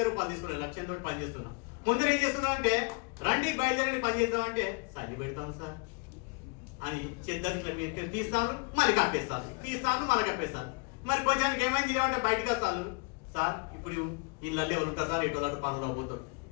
రూపాయలు తీసుకున్నాను. లక్ష్యంతో పని చేస్తున్నా. కొందరు ఏం చేస్తున్నా అంటే రండి బయలుదేరండి పని చేద్దామంటే సల్లి పెడతాను సార్ అని చెద్దరిట్లా మీరు తీస్తాను మళ్ళీ కప్పేస్తాను, తీస్తాను మళ్ళీ కప్పేస్తాను. మరి కొంచెం ఏమైంది ఏమంటే బయటకు వస్తాను సార్ ఇప్పుడు ఇళ్ళల్లో ఎవరు ఉంటారు సార్ ఎటు అటు పనులు పోతారు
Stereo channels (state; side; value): quieter; right; 31.9 dB